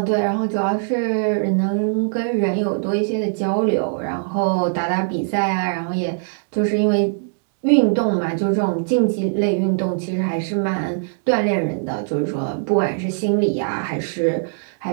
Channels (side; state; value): left; silent; 65 dB below the other